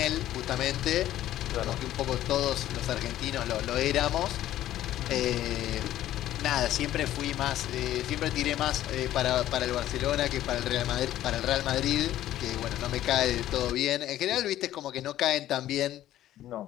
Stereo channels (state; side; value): quieter; right; 13.2 dB